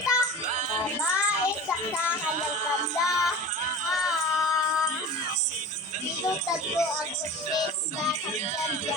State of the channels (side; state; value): both; normal; correlation 0.35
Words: babae sa kanyang kanda. Tinutad ko ang kusip sa kanyang